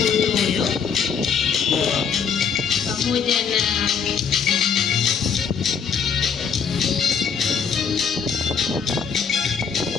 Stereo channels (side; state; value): right; quieter; 6.5 dB